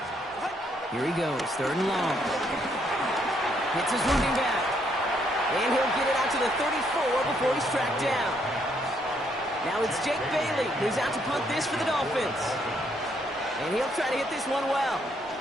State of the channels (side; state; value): both; normal; correlation 0.72